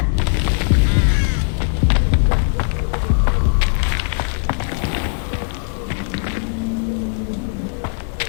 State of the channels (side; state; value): right; silent; digital silence